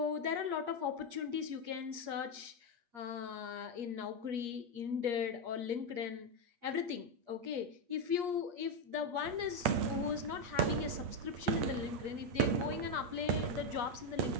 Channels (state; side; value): late; left; 8.5 ms